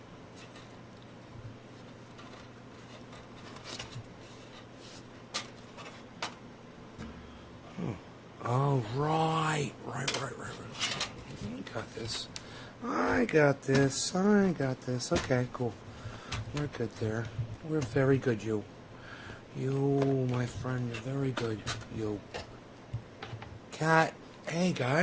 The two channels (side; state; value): both; identical; correlation 1.00